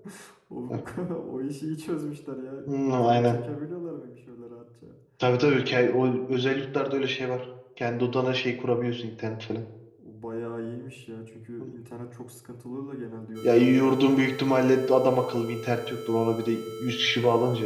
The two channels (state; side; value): identical; both; correlation 1.00